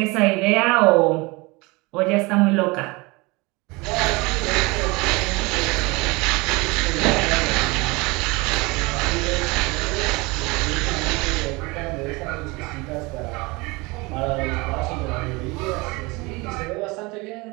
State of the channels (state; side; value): quieter; left; 25.0 dB